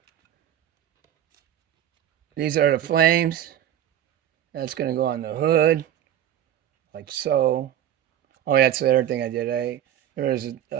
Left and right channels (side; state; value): left; quieter; 11.0 dB